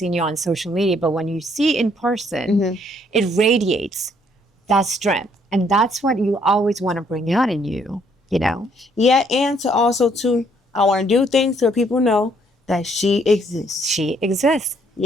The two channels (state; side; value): normal; both; correlation 0.67